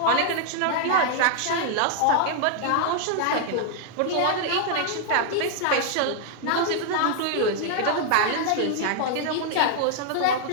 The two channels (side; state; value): both; different; correlation 0.00